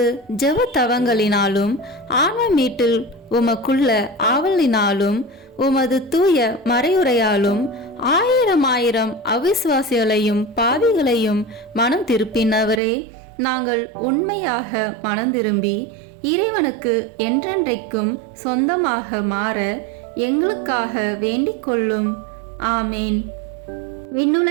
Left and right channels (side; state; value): left; drops out; at 12.8 s